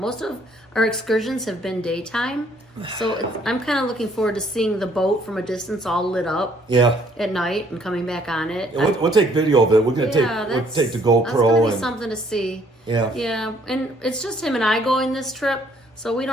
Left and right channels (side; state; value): both; normal; correlation 0.64